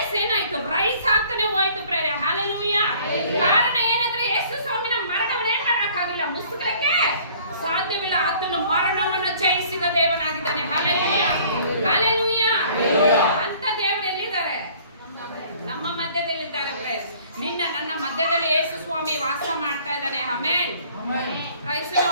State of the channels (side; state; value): both; inverted; correlation -0.54